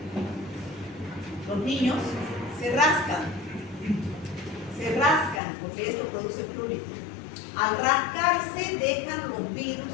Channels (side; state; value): right; drops out; at 5.4 s